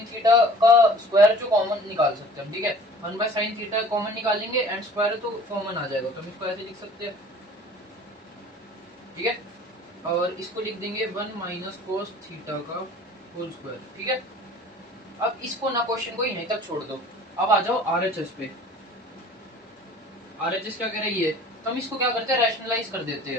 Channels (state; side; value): normal; both; correlation 0.47